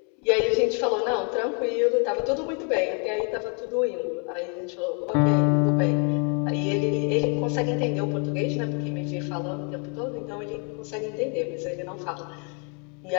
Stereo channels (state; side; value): quieter; right; 37.3 dB